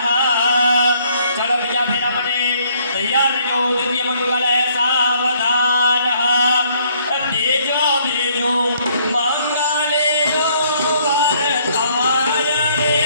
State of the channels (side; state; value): both; inverted; correlation -0.65